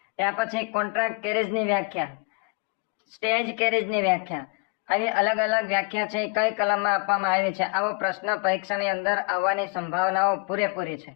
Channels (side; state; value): right; quieter; 33.2 dB